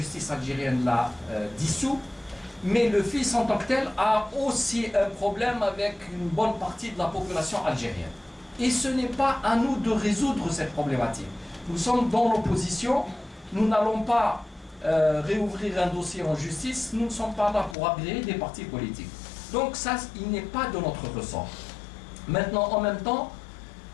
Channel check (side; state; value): right; drops out; at 17.8 s